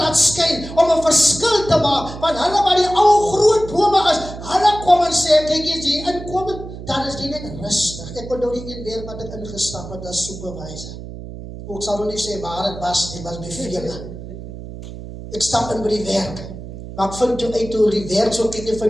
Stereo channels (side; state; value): right; noise; hum, 12 dB below the sound